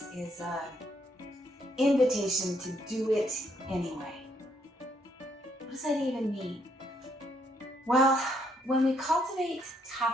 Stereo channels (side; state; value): both; normal; correlation 0.72